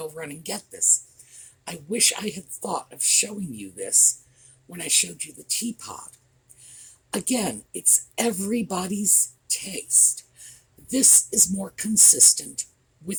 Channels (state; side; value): identical; both; correlation 1.00